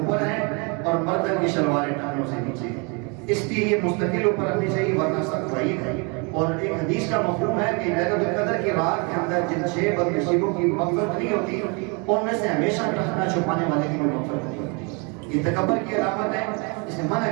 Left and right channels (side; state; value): left; quieter; 32.3 dB